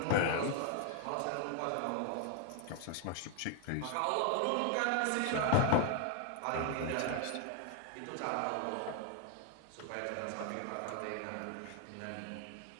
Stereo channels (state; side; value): different; both; correlation 0.00